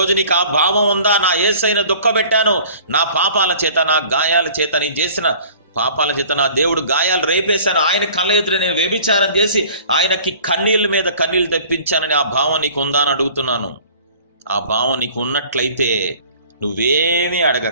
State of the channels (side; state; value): both; inverted; correlation -0.49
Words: నీకు ఆ భావం ఉందా? నా యేసయ్యను దుఃఖపెట్టాను, నా పాపాల చేత, నా గాయాల చేత, నేను చేసిన పాపాల చేత నా దేవుడు గాయాలు రేపేశాను, ఆయన కళ్ళ ఎదురు నేను వ్యభిచారం చేసి ఆయనకి కన్నీళ్ళ మీద కన్నీళ్ళు తెప్పించానని ఆ భావం నీకు ఉందా అని అడుగుతున్నాను. ఆ భావం నీకు ఉన్నట్లయితే నువ్వేమీ